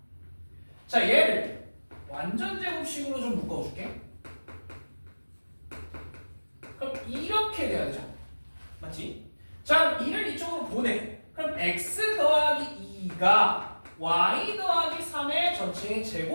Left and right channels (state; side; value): inverted; both; correlation -1.00